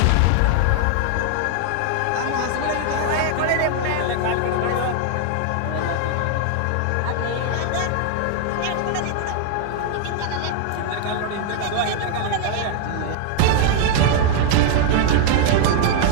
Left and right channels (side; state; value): both; different; correlation 0.00